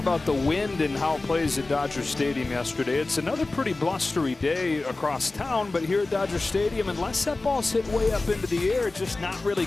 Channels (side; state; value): right; quieter; 3.2 dB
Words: the wind and how it plays at Dodger Stadium yesterday. It's another pretty blustery day across town, but here at Dodger Stadium, unless that ball's hit way up into the air, it's just not really